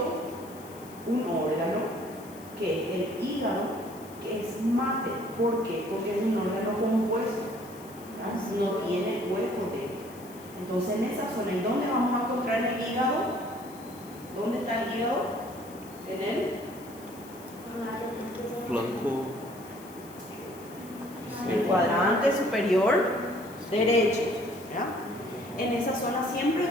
un órgano que es el hígado, que es mate. ¿Por qué? Porque es un órgano compuesto, ¿verdad? No tiene hueco dentro. Entonces en esa zona, ¿y dónde vamos a encontrar el hígado? ¿Dónde está el hígado? En Flanco. el cuadrante superior derecho, ¿verdad? En esa zona siempre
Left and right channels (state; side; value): noise; left; hiss, 21 dB below the sound